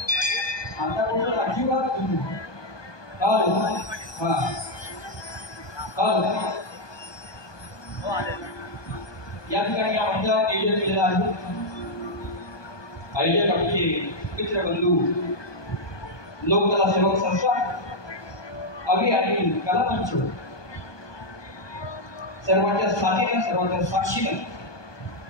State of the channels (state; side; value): late; right; 1.2 ms